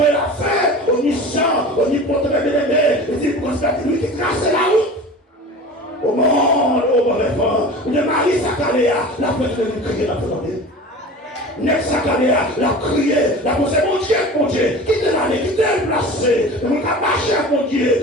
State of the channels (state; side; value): normal; both; correlation 0.36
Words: et la fin, omniscient, omnipotent, bien-aimé, et dit, pour constater lui qui trace la route. Au monde, au mauvais vent, on est Marie Sakaléa, la fête de nous crier dans le monde. Nex Sakaléa, la crié, la posé, mon Dieu, quittez l'année, quittez le placé, on a marché à mon